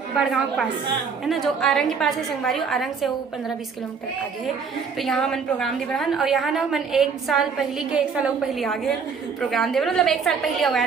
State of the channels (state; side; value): quieter; left; 5.7 dB